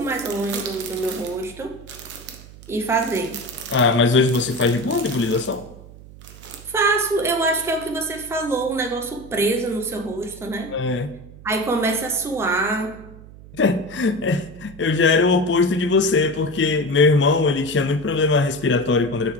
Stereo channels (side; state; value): right; noise; hum, 19 dB below the sound